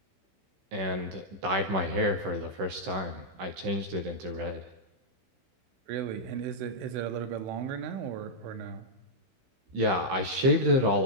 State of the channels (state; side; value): late; left; 15 ms